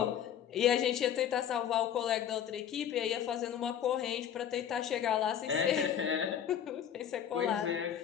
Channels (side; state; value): right; quieter; 9.4 dB